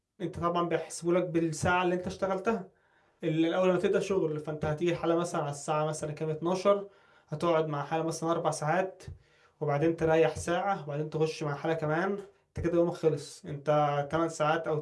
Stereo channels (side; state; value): both; identical; correlation 1.00